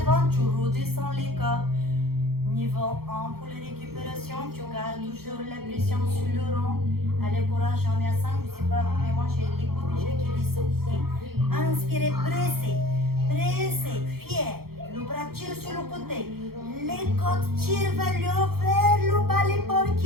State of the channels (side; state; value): left; late; 0.94 ms